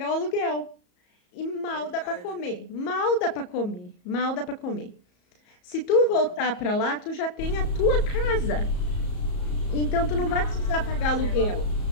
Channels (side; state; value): right; late; 34 ms